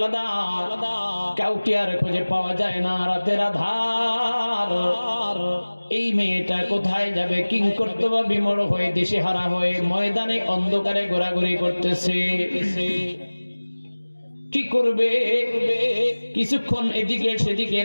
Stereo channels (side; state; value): both; inverted; correlation -1.00